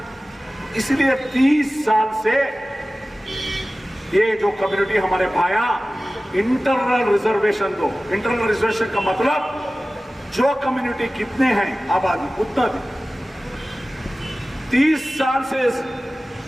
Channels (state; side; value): normal; both; correlation 0.96